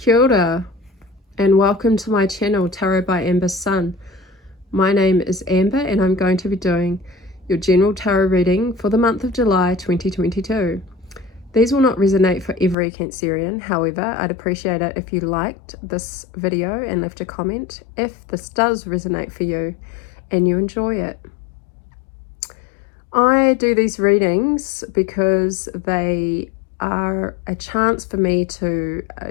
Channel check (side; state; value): right; drops out; at 12.8 s